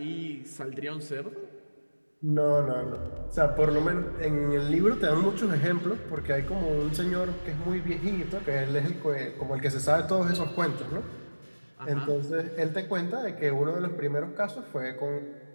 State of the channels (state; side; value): inverted; both; correlation -1.00